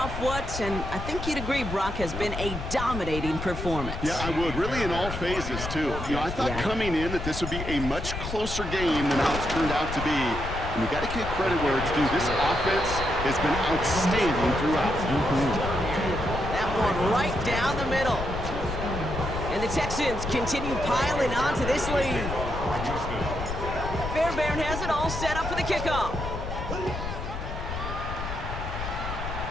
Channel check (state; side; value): noise; left; rumble, 6 dB below the sound